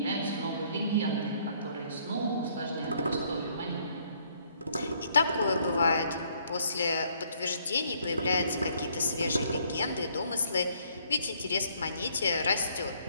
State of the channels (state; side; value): inverted; both; correlation -0.66